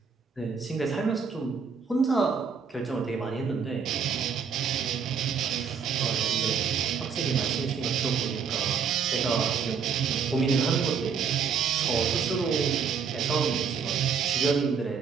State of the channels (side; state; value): left; quieter; 6.3 dB